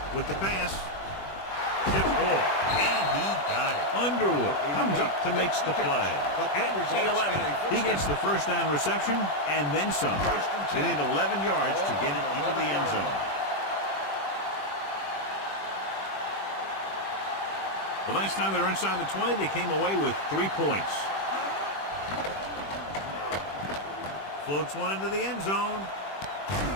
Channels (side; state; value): right; late; 21 ms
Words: With the pass, tip ball, and he got it. Underwood comes up to makes the play. At the 11, he gets the 1st down reception and then some. They need 11 yards to get it into the end zone. The last time they were inside the 20, they came away with 3 points. Floats one into the end zone.